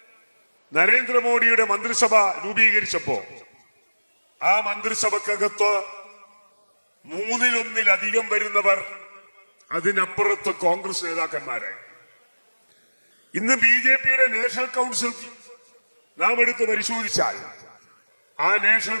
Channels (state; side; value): inverted; both; correlation -1.00